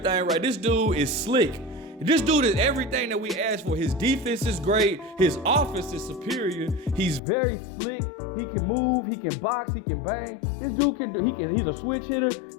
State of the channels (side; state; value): right; drops out; at 7.2 s